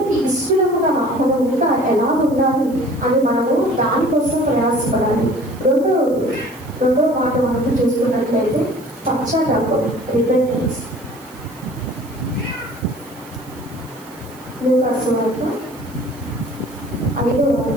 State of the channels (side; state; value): right; noise; hiss, 23 dB below the sound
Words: ఇష్టముగా మనం ఇంకా ఎలా ఉండాలి అని మనము దానికోసం ప్రయాసపడాలి. రెండో మాట మనం చూసుకున్నట్లయితే పశ్చాత్తాపం, రిపెంటెన్స్. లూకా సువార్త 5వ